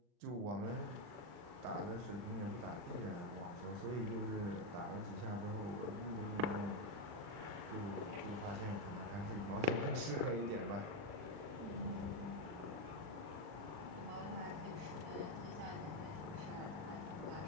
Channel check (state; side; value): late; left; 39 ms